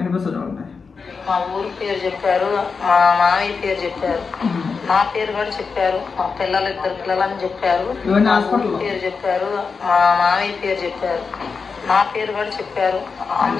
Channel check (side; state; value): right; quieter; 5.1 dB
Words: చూడండి. మా ఊరి పేరు చెప్పారు, మా మామయ్య పేరు చెప్పారు, నా పేరు కూడా చెప్పారు, మా ఇద్దరు పిల్లలని చెప్పారు, పేరు చెప్పారు, మా మామయ్య పేరు చెప్పారు, నా పేరు కూడా చెప్పారు.